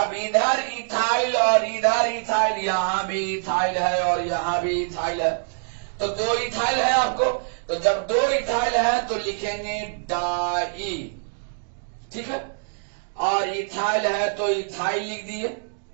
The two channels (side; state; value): left; silent; digital silence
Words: इधर इथाइल और इधर इथाइल, यहां भी इथाइल है और यहां भी इथाइल है, तो 2 इथाइल है आपको। तो जब 2 इथाइल है तो लिखेंगे डाई, ठीक है। और इथाइल है तो इथाइल लिख दिए,